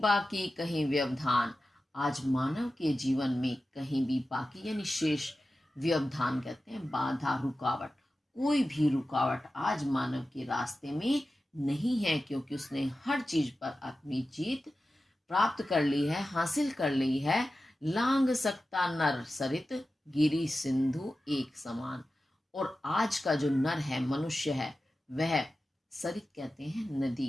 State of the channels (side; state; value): both; normal; correlation 0.94